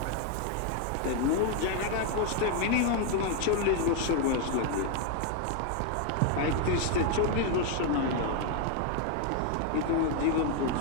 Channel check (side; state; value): both; different; correlation 0.01